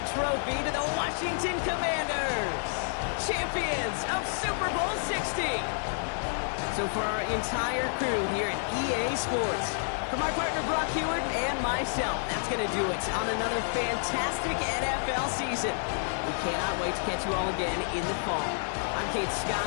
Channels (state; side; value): silent; right; digital silence